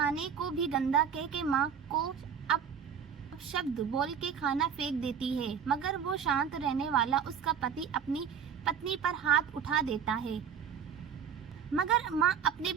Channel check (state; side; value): quieter; left; 7.6 dB